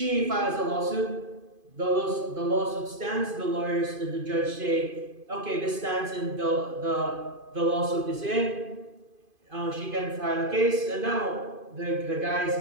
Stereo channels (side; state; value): left; late; 2.5 ms